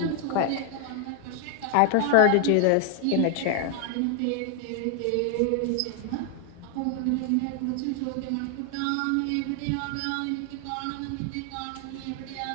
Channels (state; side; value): different; both; correlation 0.00